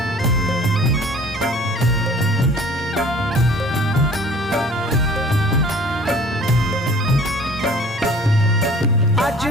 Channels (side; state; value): both; normal; correlation 0.49